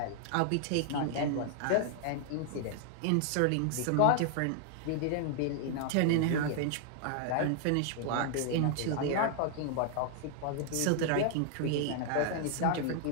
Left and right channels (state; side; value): different; both; correlation 0.00